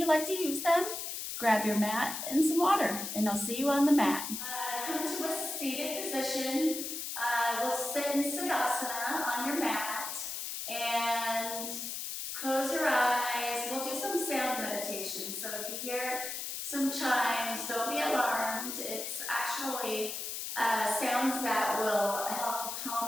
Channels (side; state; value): left; noise; hiss, 5 dB below the sound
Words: like to use them. Grab your mat and some water, and I'll see you on the mat. Come to a seated position. We'll sit in Siddhasana on your mat. And close your eyes. We'll do some sound meditation. So if you hear some chimes, don't be alarmed. It's actually sounds that will help